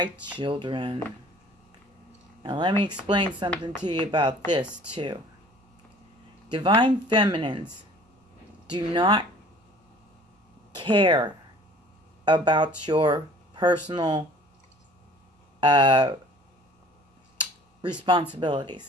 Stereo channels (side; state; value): both; normal; correlation 0.50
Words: children. Now let me explain something to you about this too. Divine feminines do not care about your personal